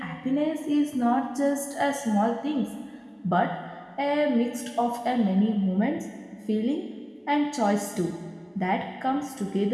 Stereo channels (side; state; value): both; identical; correlation 1.00